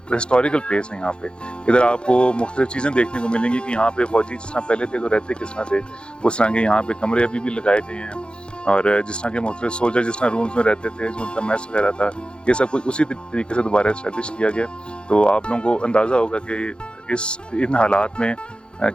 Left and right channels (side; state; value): right; late; 0.053 ms